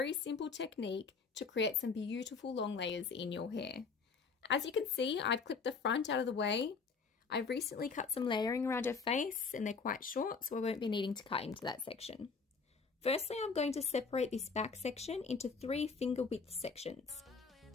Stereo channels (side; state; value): right; quieter; 5.1 dB